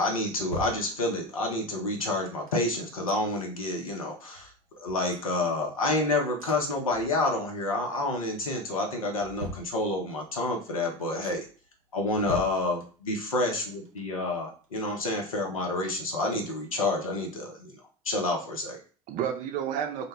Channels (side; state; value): both; normal; correlation 0.21